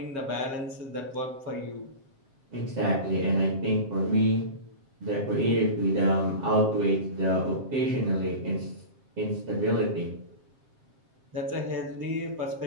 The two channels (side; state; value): left; late; 7.5 ms